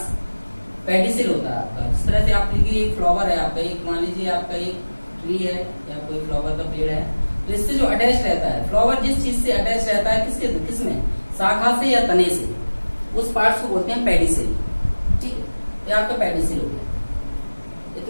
पेडिसिल होता है आपका। इस तरह से आप देखिए एक फ्लावर है आपका, एक मान लीजिए आपका एक ट्री है या कोई फ्लावर का पेड़ है, तो इससे जो अटैच रहता है फ्लावर, जिस चीज से अटैच रहता है किसमें, शाखा से या तने से, उस पार्ट्स को बोलते हैं पेडिसिल। ठीक है। ये आपका पेडिसिल हो गया।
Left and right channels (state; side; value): inverted; both; correlation -1.00